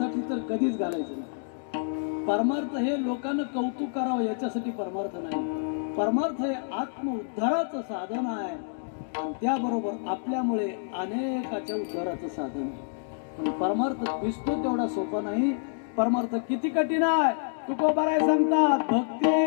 तर कधीच घालायचं नाही. परमार्थ हे लोकांना कौतुक करावं याच्यासाठी परमार्थ नाही. परमार्थ हे आत्म उद्धाराचं साधन आहे आणि त्याबरोबर आपल्यामुळे अनेकाच्या उद्धाराचं साधन आहे. पण परमार्थ दिसतो तेवढा सोपा नाही. परमार्थ किती कठीण आहे. तुकोबाराय सांगतात, भक्ती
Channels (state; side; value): silent; right; digital silence